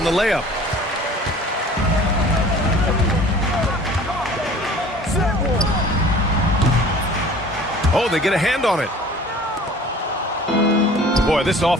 the layup. Oh, they get a hand on it. Boy, this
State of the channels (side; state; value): both; normal; correlation 0.47